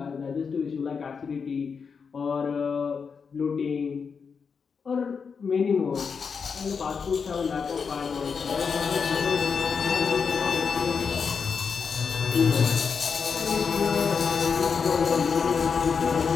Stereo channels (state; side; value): quieter; right; 5.8 dB